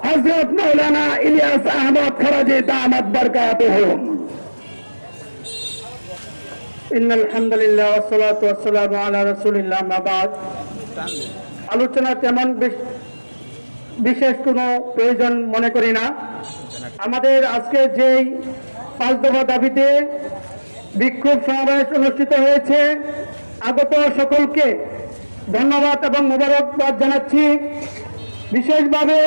হযরত মাওলানা ইলিয়াস আহমদ ফরাজি দামাত বরকাতুহুম। ইন্নাল হামদুলিল্লাহ ওয়াসসালাতু ওয়াসসালামু আলা রাসূলিল্লাহ মা বাদ। আলোচনা তেমন বিশেষ কোনো প্রয়োজন মনে করি না। আমাদের আজকে যেই 5 দফা দাবিতে বিক্ষোভ সমাবেশ অনুষ্ঠিত হয়েছে, আগত সকলকে ধন্যবাদ এবং মোবারকবাদ জানাচ্ছি। বিশেষভাবে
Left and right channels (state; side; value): inverted; both; correlation -1.00